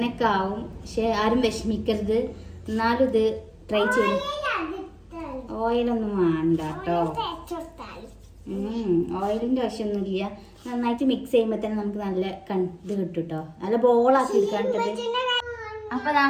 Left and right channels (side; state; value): both; identical; correlation 1.00